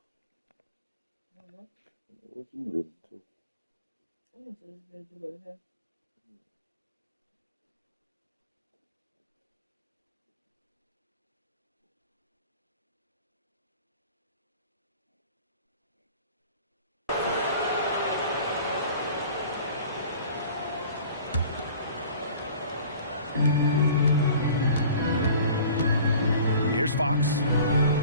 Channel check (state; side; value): inverted; both; correlation -0.45